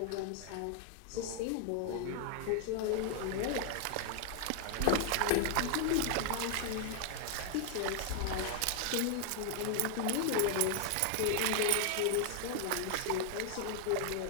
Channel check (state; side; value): different; both; correlation 0.00